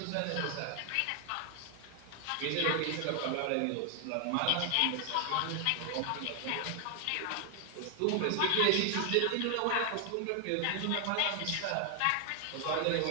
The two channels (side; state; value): both; different; correlation 0.00